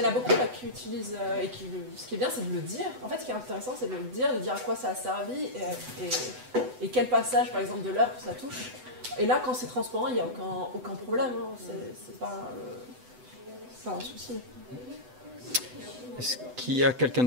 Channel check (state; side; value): late; left; 8.0 ms